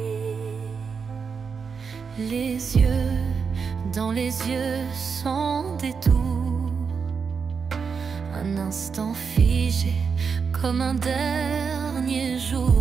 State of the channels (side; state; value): left; quieter; 5.8 dB